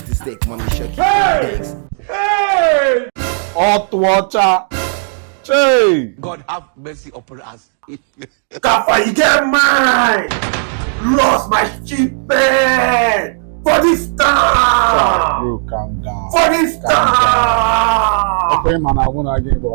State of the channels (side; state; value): left; silent; digital silence